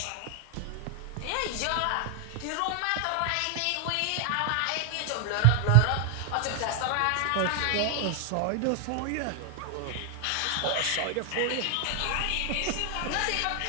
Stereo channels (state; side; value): different; both; correlation 0.00